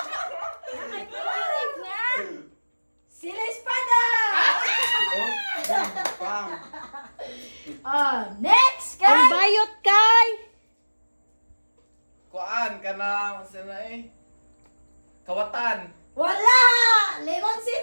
Sila espada. Buang. Next Ang kay bayot kay. Kuan ka na sila Kawatan. wala.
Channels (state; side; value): inverted; both; correlation -1.00